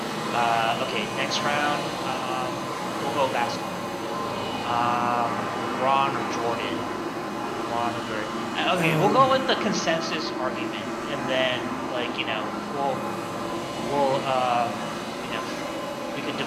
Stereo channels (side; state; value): both; identical; correlation 1.00